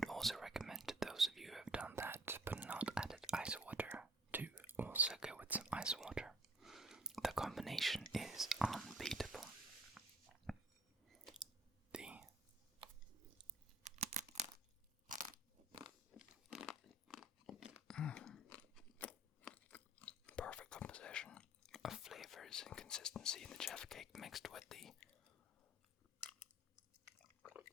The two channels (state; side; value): normal; both; correlation 0.55